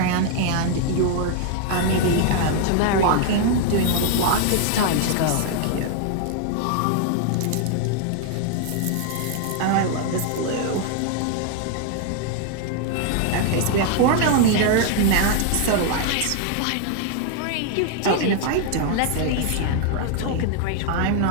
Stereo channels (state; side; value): different; both; correlation 0.00